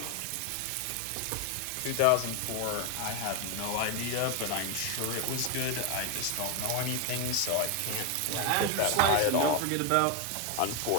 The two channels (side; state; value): both; different; correlation 0.01